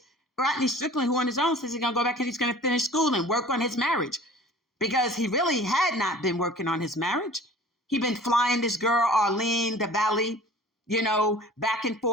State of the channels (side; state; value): both; normal; correlation 0.45